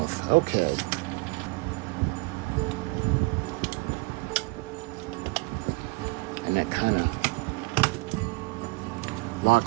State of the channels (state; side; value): quieter; left; 27.6 dB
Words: Okay. And that kind of